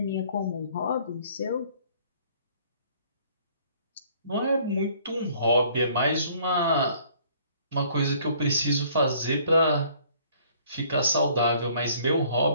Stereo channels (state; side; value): inverted; both; correlation -0.58